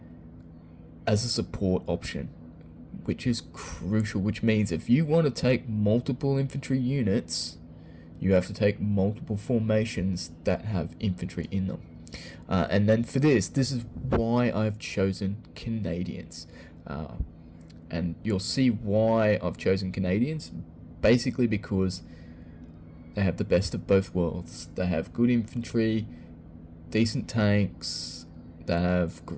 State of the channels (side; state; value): both; identical; correlation 1.00